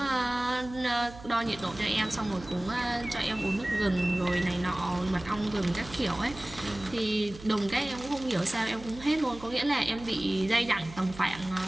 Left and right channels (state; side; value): noise; right; hum, 16 dB below the sound